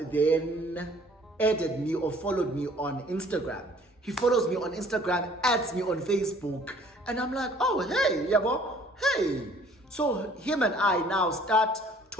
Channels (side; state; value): both; normal; correlation 0.56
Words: then added me or followed me on Instagram. He follows me on Instagram, adds me on Facebook, and I'm like, oh, hey, yabo, hey. So him and I now start